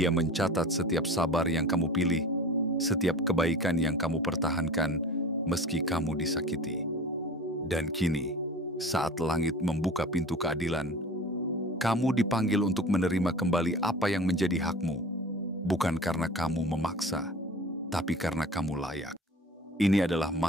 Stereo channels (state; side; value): normal; both; correlation 0.38